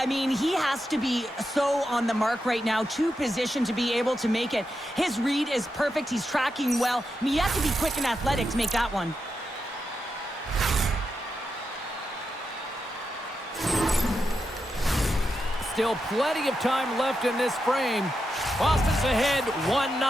mean, he has to be so on the mark right now, to position to be able to make it. His read is perfect. He's tracking well. I mean, you have to be quick and athletic to make that one. Still plenty of time left in this frame. Boston's ahead 1-0.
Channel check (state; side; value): normal; both; correlation 0.87